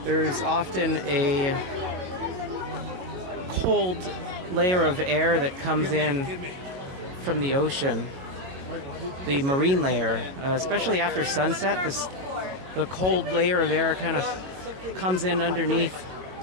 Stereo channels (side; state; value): left; late; 22 ms